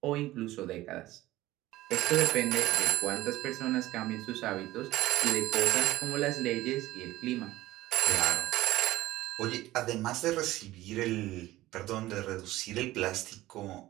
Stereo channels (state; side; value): quieter; left; 16.7 dB